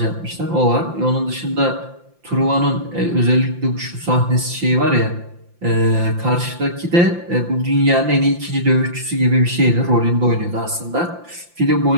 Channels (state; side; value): late; left; 5.8 ms